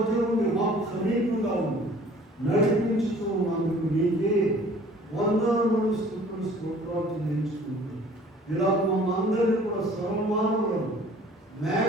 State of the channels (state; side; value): normal; both; correlation 0.51